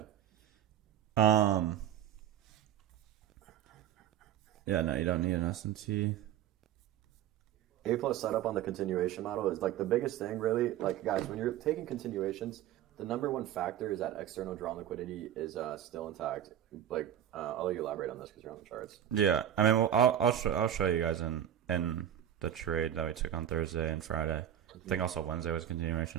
Yeah, no, you don't need an SMT. A+ setup on the continuation model is like the biggest thing, really. Like guys, when you're taking continuations, the number one factor is that external drawn liquidity is still intact. Like I'll let you elaborate on this because you're on the charts. Yeah, I mean, well, I'll show you guys in the trade that we took on Thursday and Friday. I think also Wednesday was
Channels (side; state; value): left; quieter; 10.7 dB